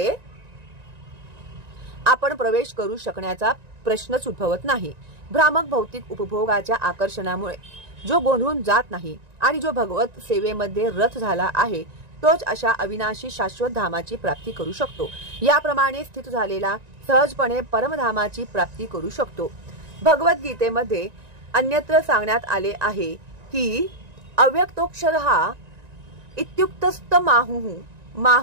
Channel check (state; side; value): late; left; 1.9 ms